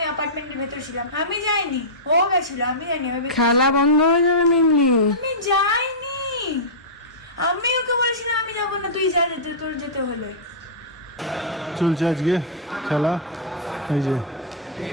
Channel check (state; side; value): normal; both; correlation -0.15